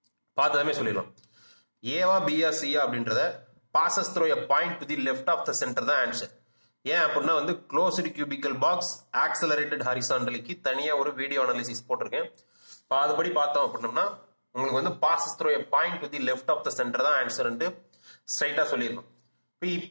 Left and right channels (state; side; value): inverted; both; correlation -1.00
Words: பார்த்ததுமே சொல்லிடலாம். ஏவா பியா சியா அப்படின்றத passes through a point to the left of the centre தான் ஆன்சர். ஏன் அப்படின்னா வந்து க்ளோஸ்டு கியூபிக்கல் பாக்ஸ் ஆக்சலரேட்டட் ஹரிசாண்டலிக்கு தனியா ஒரு வீடியோ அனாலிசிஸ் போட்டிருக்கேன். அதுபடி பார்த்தோம் அப்படின்னம்னா உங்களுக்கு வந்து passes through a point to the left of the centre தான் ஆன்சர்ன்ட்டு ஸ்ட்ரைட்டா சொல்லிடணும்.